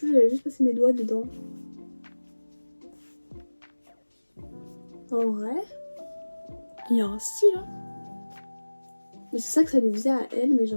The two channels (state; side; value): inverted; both; correlation -1.00